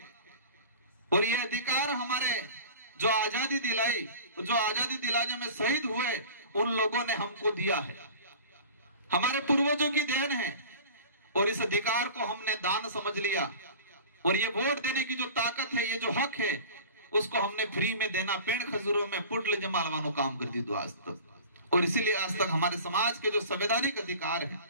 और ये अधिकार हमारे जो आजादी दिलाने में शहीद हुए उन लोगों ने हमको दिया है, हमारे पूर्वजों की देन है। और इस अधिकार को हमने दान समझ लिया। और ये वोट देने की जो ताकत है, ये जो हक है, उसको हमने फ्री में देना पेड़ खजूरों में पुटल जमालवानो काम कर दी दो आज तक। और इसीलिए आज तक हमारे समाज के जो संवैधानिक अधिकार हैं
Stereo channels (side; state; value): both; inverted; correlation -0.39